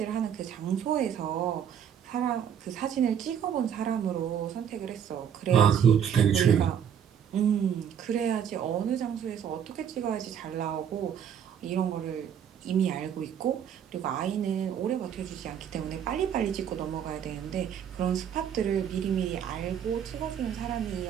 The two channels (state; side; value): quieter; left; 8.5 dB